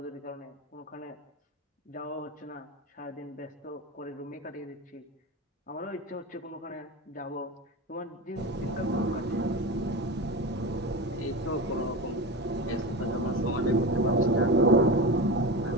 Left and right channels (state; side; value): normal; both; correlation 0.24